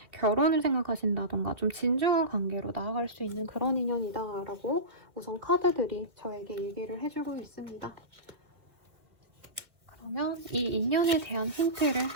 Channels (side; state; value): left; late; 1.9 ms